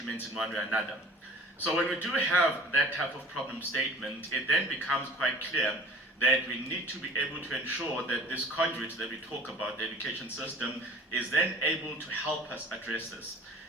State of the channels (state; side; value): normal; both; correlation 0.45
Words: in one way or another. So when we do have that type of problem statement, it then becomes quite clear that we need to be able to ensure that this conduit that we talk about, the education system, is then able to help us address this.